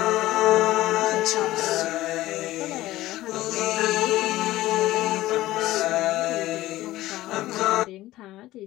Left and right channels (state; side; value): quieter; right; 16.3 dB